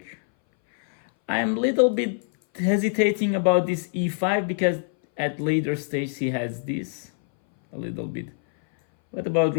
I'm a little bit hesitating about this e5 because at later stage he has this a little bit. What about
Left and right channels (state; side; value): silent; right; 60 dB below the other